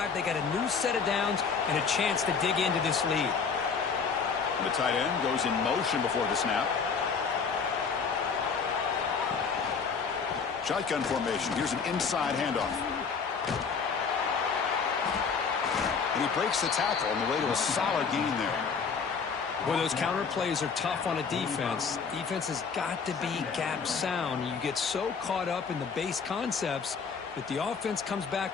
they got a new set of downs and a chance to dig into this lead. The tight end goes in motion before the snap. Shotgun formation. Here's an inside handoff. And he breaks the tackle on the way to a solid gain there. Well, those counter plays are tough on a defense. Defense has got to be gap sound. You get so caught up in the base concepts that the offense comes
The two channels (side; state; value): right; quieter; 5.7 dB